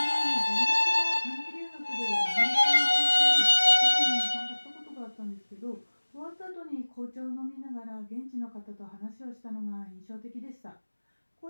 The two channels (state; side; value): inverted; both; correlation -1.00